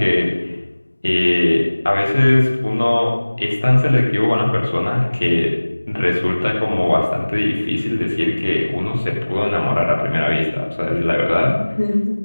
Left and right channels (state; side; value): inverted; both; correlation -1.00